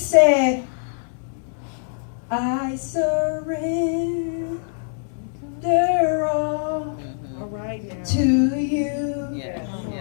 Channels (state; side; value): silent; right; digital silence